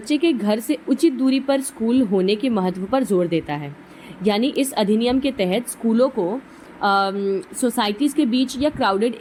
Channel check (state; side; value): identical; both; correlation 1.00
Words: के घर से उचित दूरी पर स्कूल होने के महत्व पर जोर देता है. यानी इस अधिनियम के तहत स्कूलों को सोसाइटीज़ के बीच या क्राउडेड